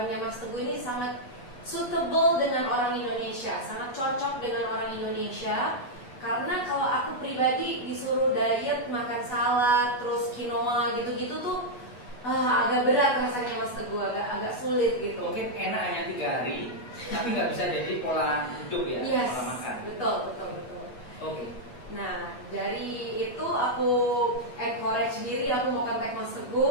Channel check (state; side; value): late; right; 8.1 ms